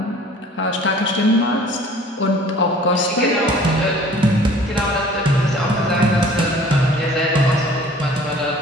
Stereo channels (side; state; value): both; normal; correlation 0.50